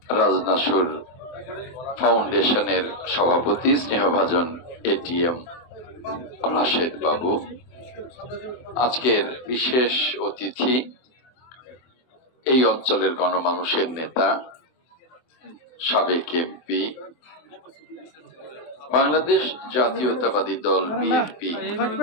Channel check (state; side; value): late; right; 24 ms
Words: রাজনাসুর ফাউন্ডেশনের সভাপতি স্নেহভাজন এটিএম রাশেদ বাবু, আজকের বিশেষ অতিথি এই অঞ্চলের গণমানুষের নেতা, সাবেক এমপি, বাংলাদেশ জাতীয়তাবাদী দল বিএনপি